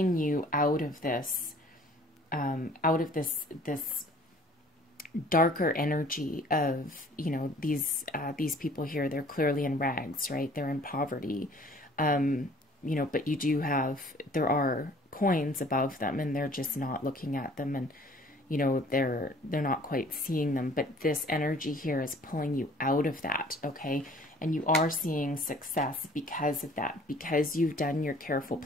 you out of this out of this darker energy of, you know, these people here. They're clearly in rags, right? They're in poverty, you know, but you do have, there are coins above them, and they're just not looking at them, and, you know, they're not quite seeing them. But this energy here is pulling you out of that, okay? And you are seeing success because of that, because you've done your careful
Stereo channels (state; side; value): normal; both; correlation 0.53